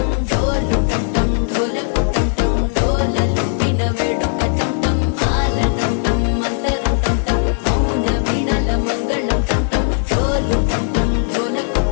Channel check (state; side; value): silent; right; 62 dB below the other